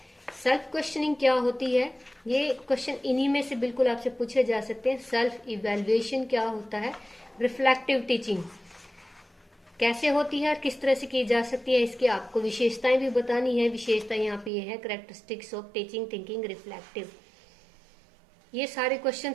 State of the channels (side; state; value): left; drops out; at 14.5 s